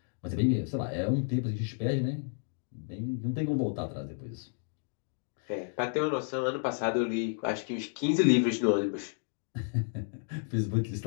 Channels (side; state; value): right; silent; 57 dB below the other